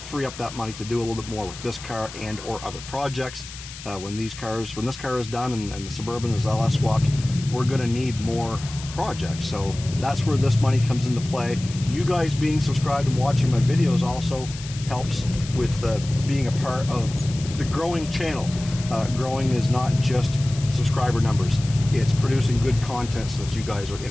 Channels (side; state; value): left; noise; hiss, 14 dB below the sound